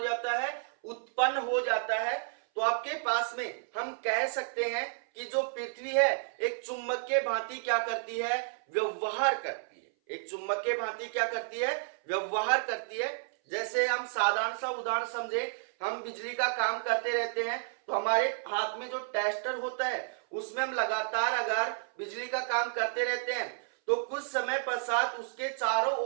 है, उत्पन्न हो जाता है। तो आपके पास में हम कह सकते हैं कि जो पृथ्वी है एक चुंबक के भांति क्या करती है, व्यवहार करती है। एक चुंबक के भांति क्या करती है, व्यवहार करती है। जैसे हम साधारण सा उदाहरण समझे, हम बिजली का काम करते रहते हैं तो हमारे हाथ में जो टेस्टर होता है उसमें हम लगातार अगर बिजली का काम करते रहते हैं तो कुछ समय पश्चात उसके चारों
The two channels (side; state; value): left; silent; 57 dB below the other